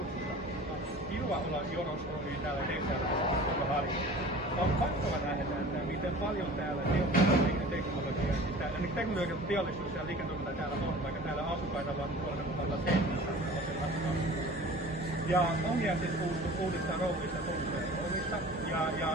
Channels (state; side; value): normal; both; correlation 0.42